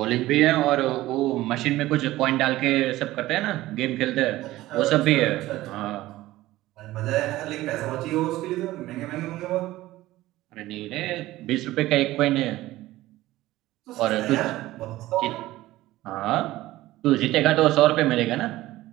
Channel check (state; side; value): quieter; left; 16.6 dB